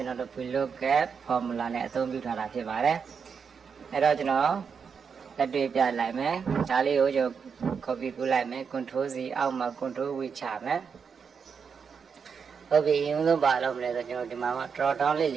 ွန်တော်တို့ VLOOKUP formula နဲ့အသုံးပြုထားတာဖြစ်ပါတယ်အဲ့တော့ကျွန်တော်လက်တွေ့ပြလိုက်မယ်ဒါလေးကိုကျွန်တော် copy ကူးလိုက်မယ် control C အောက်မှာ control V ချမယ်ဟုတ်ပြီအရင်ဆုံးပါလို့မလဲဆိုကျွန်တော်ဒီမှာ drop down လေး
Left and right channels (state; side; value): quieter; left; 6.2 dB